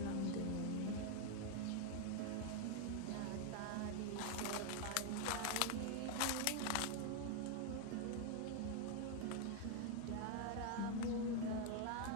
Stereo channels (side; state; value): both; different; correlation 0.00